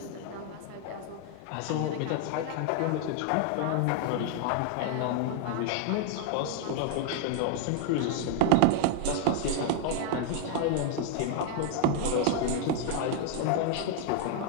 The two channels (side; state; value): both; different; correlation 0.00